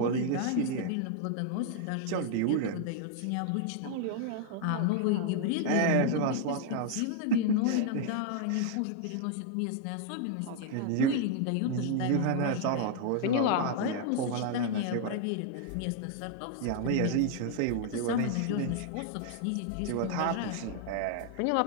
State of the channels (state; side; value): different; both; correlation 0.00